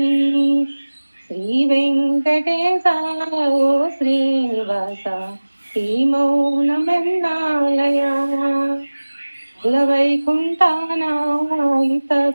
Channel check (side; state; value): both; inverted; correlation -1.00